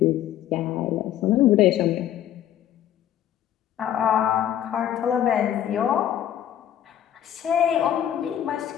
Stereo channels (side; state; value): right; quieter; 10.9 dB